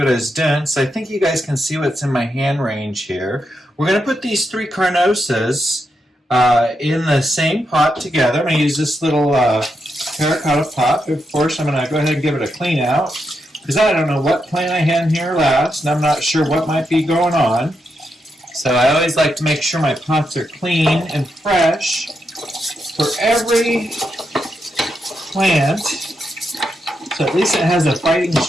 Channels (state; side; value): normal; both; correlation 0.83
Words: I was doing. So I think you guys can see what's in my hand range here. We're going to put these 3 carnosas in the same pot together. I'm going to use this little terracotta pot. Of course, I'm going to go ahead and give it a clean out, because I don't know what plant I had in here last, and I'm not sure what might be going on. So I always like to make sure my pots are clean and fresh for every plant, so at least it has a fighting